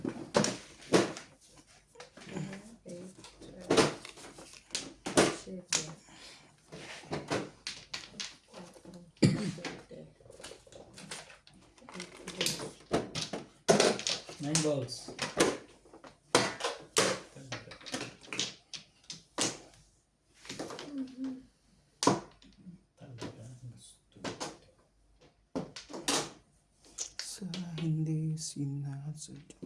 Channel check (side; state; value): both; identical; correlation 1.00